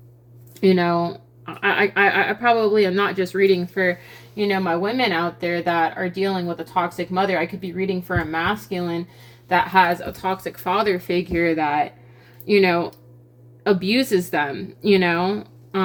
you know, I probably am not just reading for, you know, my women out there that are dealing with a toxic mother. I could be reading for a masculine that has a toxic father figure that, you know, abuses them, you know.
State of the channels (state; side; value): identical; both; correlation 1.00